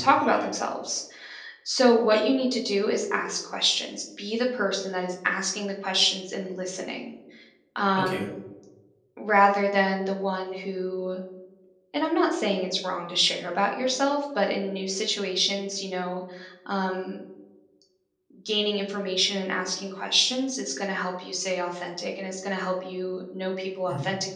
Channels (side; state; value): both; identical; correlation 1.00